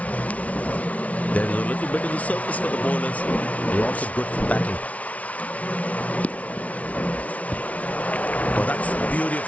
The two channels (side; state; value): right; late; 0.067 ms